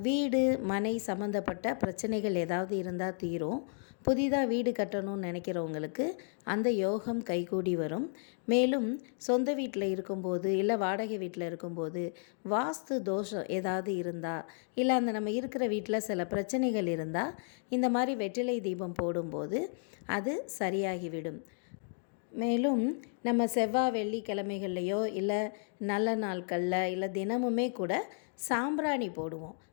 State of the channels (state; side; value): silent; right; 56 dB below the other